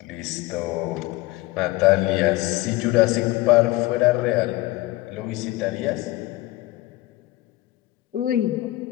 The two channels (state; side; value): quieter; right; 18.4 dB